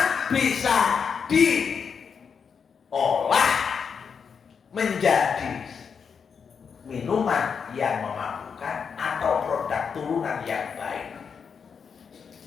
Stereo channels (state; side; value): quieter; right; 6.3 dB